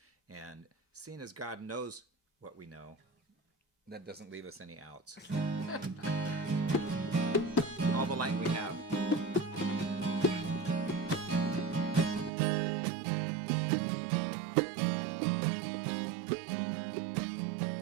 And seeing as God knows what we know, that doesn't leave us any outs. All the light we have.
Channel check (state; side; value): drops out; left; at 12.3 s